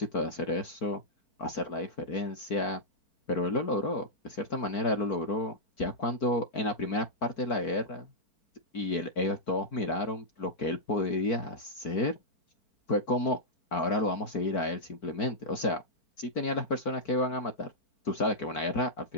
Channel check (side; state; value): right; late; 4.5 ms